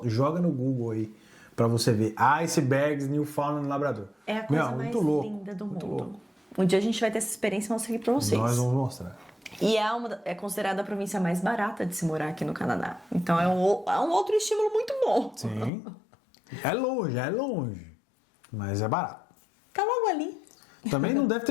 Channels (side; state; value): right; drops out; at 15.7 s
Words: Joga no Google aí pra você ver. Icebergs, Newfoundland, Labrador. É a coisa mais linda do mundo. Um dia a gente vai ter essa experiência e mostrar aqui pra vocês. Nós vamos mostrar. E é considerada a província mais barata de se morar aqui no Canadá. Então é um outro estímulo muito bom. Sim. É longe. Mas é barato. Tá logo ali. Também não deve